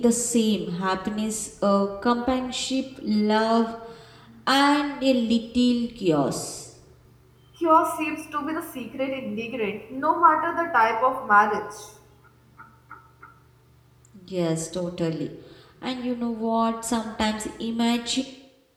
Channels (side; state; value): both; identical; correlation 1.00